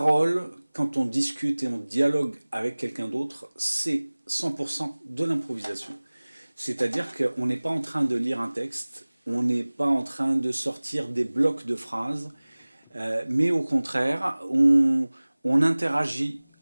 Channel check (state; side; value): inverted; both; correlation -1.00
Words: quand on discute et on dialogue avec quelqu'un d'autre, c'est 100% de l'improvisation. C'est-à-dire qu'on n'est pas en train de lire un texte, on n'est pas en train de sortir des blocs de phrases, mais au contraire, on interagit